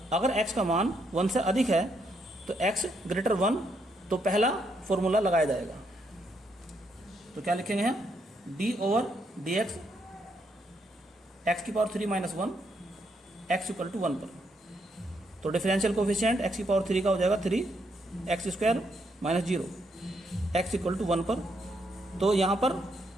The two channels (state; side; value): normal; both; correlation 0.76